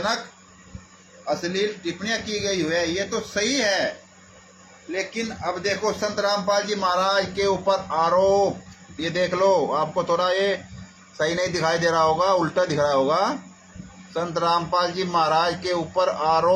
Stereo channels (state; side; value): identical; both; correlation 1.00